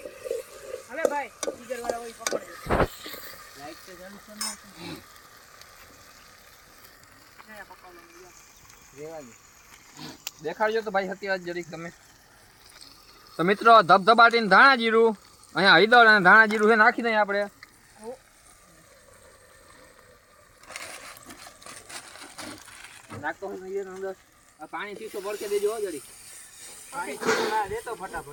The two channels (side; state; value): both; identical; correlation 1.00